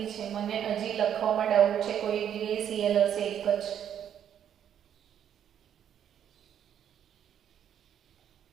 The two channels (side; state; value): left; quieter; 9.4 dB